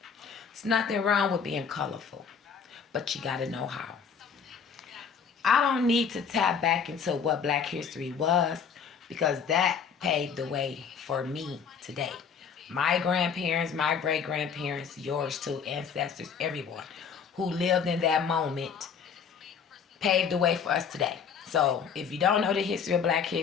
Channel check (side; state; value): right; quieter; 6.6 dB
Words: There's nothing wrong with being colorful, but you got to know how. I don't need to tap back into what Black history was because that paved the way for me today. My grandparents, my great grandparents, yours too, ancestors, everyone who lived in that moment paved the way for us today. So if you don't know the history of Black